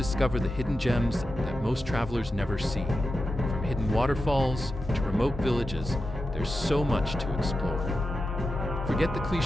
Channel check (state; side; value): normal; both; correlation 0.90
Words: the hidden gems that most travelers never see. From hidden waterfalls to remote villages, there's so much to explore. Forget the